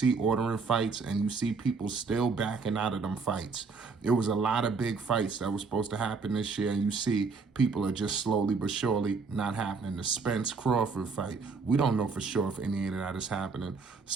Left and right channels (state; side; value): quieter; left; 4.6 dB